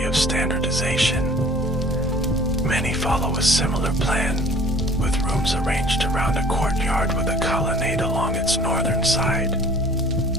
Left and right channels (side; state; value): both; normal; correlation 0.49